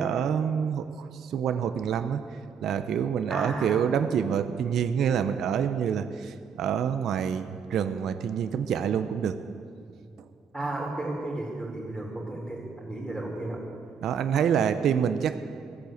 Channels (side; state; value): left; quieter; 7.0 dB